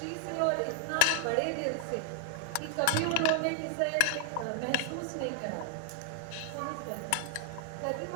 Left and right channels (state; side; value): different; both; correlation 0.00